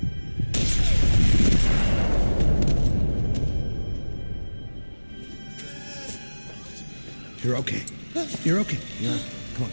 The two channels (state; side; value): inverted; both; correlation -1.00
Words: You're okay. You're okay. Yeah. Come on,